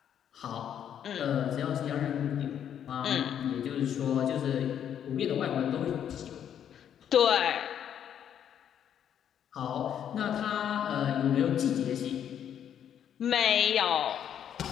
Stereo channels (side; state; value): right; quieter; 9.3 dB